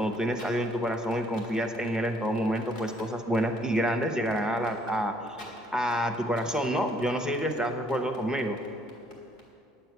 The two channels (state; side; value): normal; both; correlation 0.65